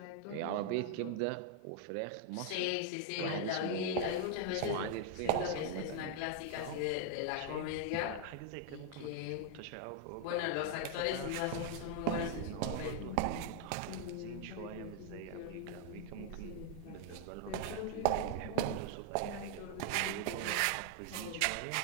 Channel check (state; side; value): different; both; correlation 0.00